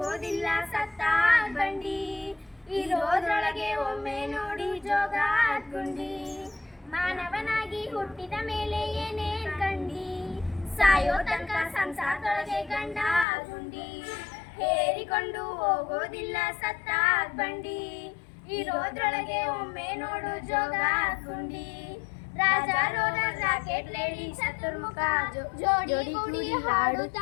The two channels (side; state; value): right; drops out; at 13.2 s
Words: ಸತ್ತ ಬಂಡಿ, ಇರೋದ್ರೊಳಗೆ ಒಮ್ಮೆ ನೋಡಿ ಜೋಗ ಗುಂಡಿ. ಮಾನವನಾಗಿ ಹುಟ್ಟಿದ ಮೇಲೆ ಏನೇನ್ ಕಂಡಿ, ಸಾಯೋ ತನಕ ಸಂಸಾರದೊಳಗೆ ಗಂಡ ಗುಂಡಿ, ಹೇರಿಕೊಂಡು ಹೋಗೋದಿಲ್ಲ ಸತ್ತ ಬಂಡಿ, ಇರೋದ್ರೊಳಗೆ ಒಮ್ಮೆ ನೋಡು ಜೋಗ ಗುಂಡಿ. ರಾಜ ರೋಗ ರಾಕೆಟ್ ಲೇಡಿ ಚತುರ್ಮುಖ, ಜೋಡಿ ಕೂಡಿ